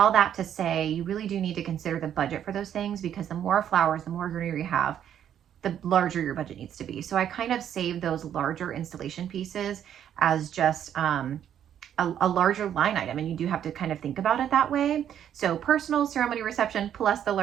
that to say, you really do need to consider the budget for those things, because the more flowers, the more greenery you have, the larger your budget needs to be. So I kind of save those larger installation pieces as just a larger line item, and you do have to kind of think about it that way. So personal, ceremony, reception, plus the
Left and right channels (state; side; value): quieter; left; 9.8 dB